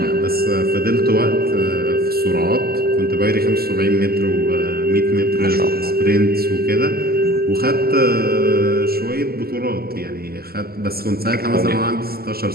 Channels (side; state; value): left; late; 0.45 ms